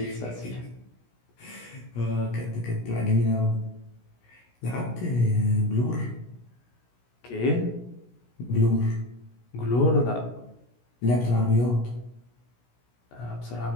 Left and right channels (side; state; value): right; late; 17 ms